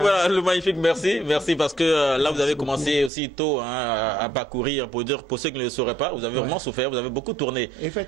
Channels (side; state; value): left; drops out; at 3.1 s